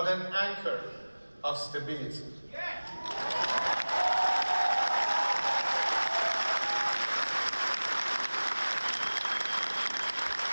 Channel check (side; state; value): both; inverted; correlation -1.00